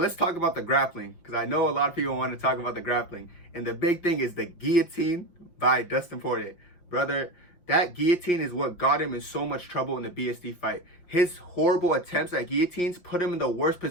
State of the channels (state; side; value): late; right; 5.7 ms